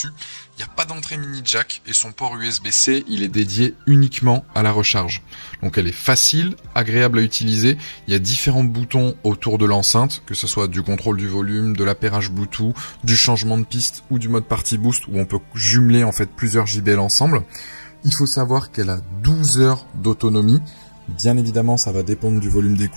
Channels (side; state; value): both; inverted; correlation -1.00